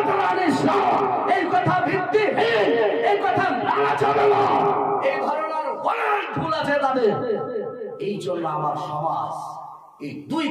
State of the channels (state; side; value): identical; both; correlation 1.00